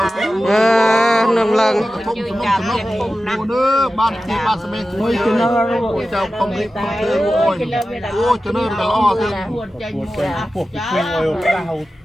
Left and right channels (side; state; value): both; normal; correlation 0.94